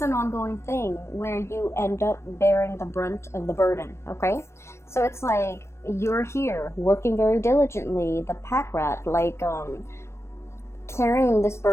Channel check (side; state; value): right; late; 0.13 ms